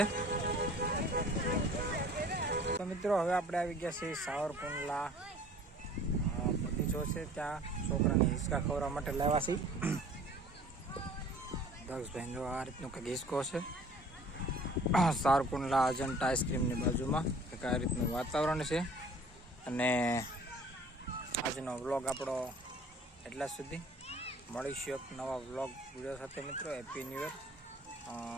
તો મિત્રો હવે આપણે આવી ગયા છીએ સાવરકુંડલા બગીચો છે. ત્યાં છોકરાને હિંચકા ખવડાવવા માટે લાવ્યા છીએ. દક્ષભાઈ જો આ રીતનું કંઈક હિંચકો છે. સાવરકુંડલા અજંટા આઈસ્ક્રીમની બાજુમાં કંઈક આ રીતનું વાતાવરણ છે. અને આજનો વ્લોગ આપણો એટલા સુધી. મળીશું એક નવા વ્લોગ વિડીયો સાથે મિત્રો. Happy new year.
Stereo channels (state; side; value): normal; both; correlation 0.50